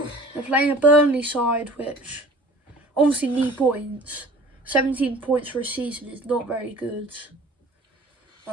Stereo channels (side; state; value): both; normal; correlation 0.46